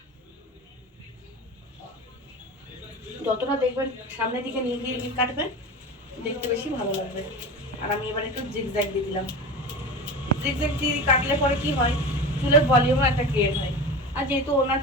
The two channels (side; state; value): both; normal; correlation 0.29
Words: যতটা দেখবেন সামনের দিকে নিয়ে দিয়ে কাটবেন, দেখতে বেশি ভালো লাগবে। আর আমি এবার একটু জিগজ্যাগ দিয়ে দিলাম। জিগজ্যাগ দিয়ে কাটলে পরে কি হয়, চুলের ভলিউমও একটা ক্রিয়েট হয়। আর যেহেতু ওনার